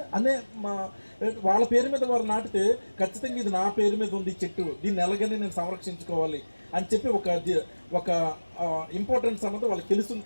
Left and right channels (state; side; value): inverted; both; correlation -1.00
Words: వాళ్ళ పేరు మీద వారు నాటితే ఖచ్చితంగా ఇది నా పేరు మీద ఉంది చెట్టు, దీన్ని ఎలాగని నేను సంరక్షించుకోవాలి అని చెప్పి ఒక ఇంపార్టెన్స్ అన్నది వాళ్ళకి తెలుస్తుంది.